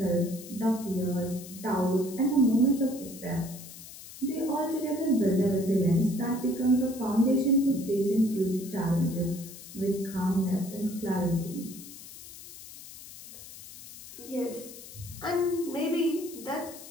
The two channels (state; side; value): noise; left; hiss, 15 dB below the sound